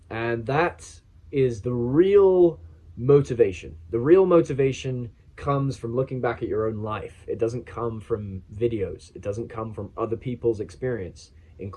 And that is the real motivation. The real motivation comes from looking back at your own life. It doesn't come from videos. It doesn't come from other people's experience,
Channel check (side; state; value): both; identical; correlation 1.00